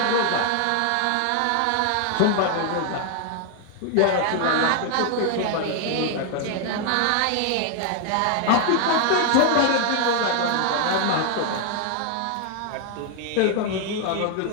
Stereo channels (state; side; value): different; both; correlation 0.00